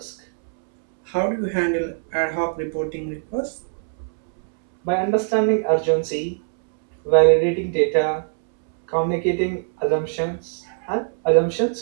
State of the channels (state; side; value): silent; left; 64 dB below the other